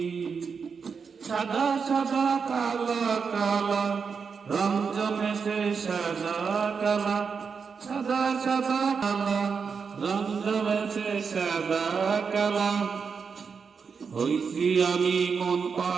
সাদা সাদা কালা কালা রং জমেছে সাদা কালা, সাদা সাদা কালা রং জমেছে সাদা কালা। হইছি আমি মন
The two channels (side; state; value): left; quieter; 5.8 dB